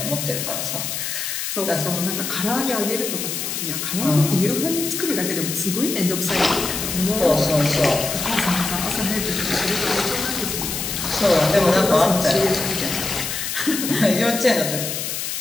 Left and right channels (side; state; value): left; noise; hiss, 3 dB below the sound